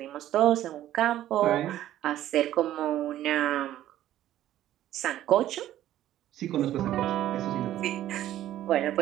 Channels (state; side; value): quieter; left; 13.0 dB